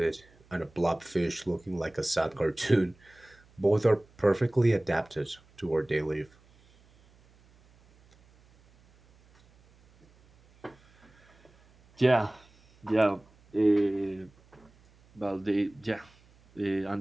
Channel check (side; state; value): right; noise; hum, 29 dB below the sound